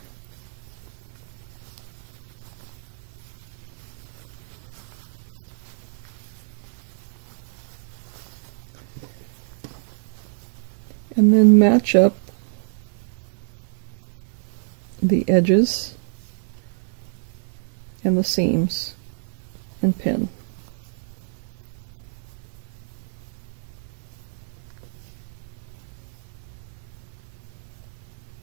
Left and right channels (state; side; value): silent; left; 61 dB below the other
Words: And then match up the edges and the seams and pin.